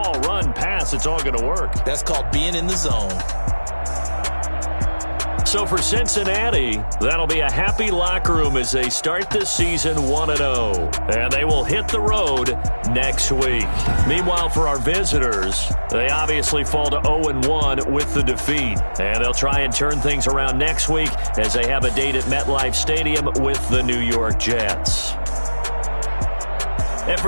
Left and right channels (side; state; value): both; inverted; correlation -1.00